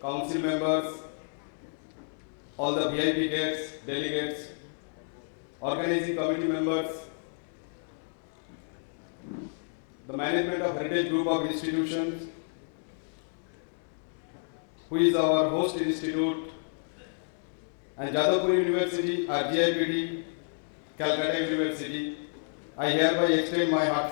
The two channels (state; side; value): silent; right; digital silence